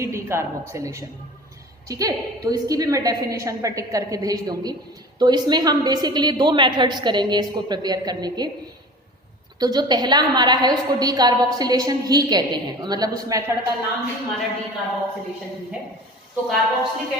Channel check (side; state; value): both; normal; correlation 0.39